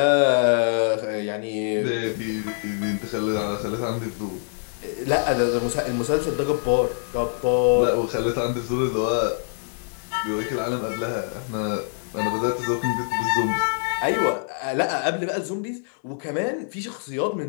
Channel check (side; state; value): right; silent; digital silence